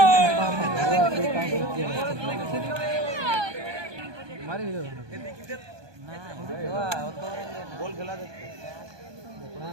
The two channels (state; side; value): late; left; 1.2 ms